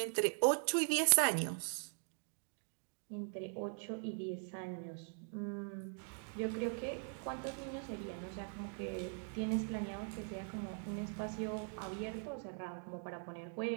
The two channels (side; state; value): left; silent; 50 dB below the other